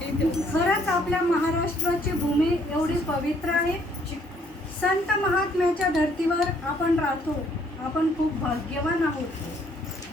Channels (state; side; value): normal; both; correlation 0.65